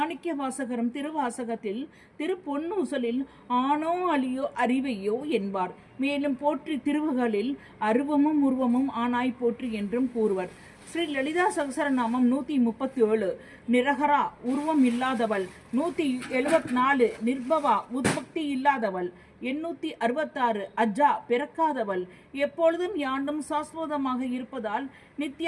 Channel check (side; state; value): both; identical; correlation 1.00